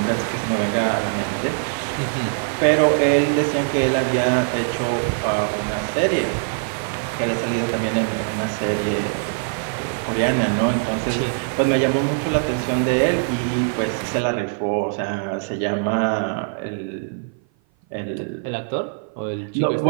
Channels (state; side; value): silent; left; 56 dB below the other